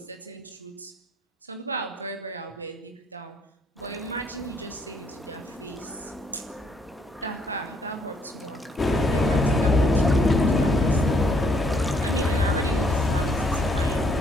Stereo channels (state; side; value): normal; both; correlation 0.68